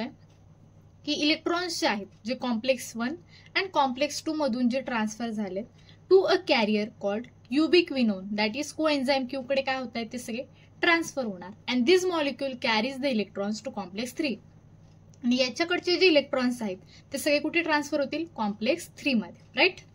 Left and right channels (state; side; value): identical; both; correlation 1.00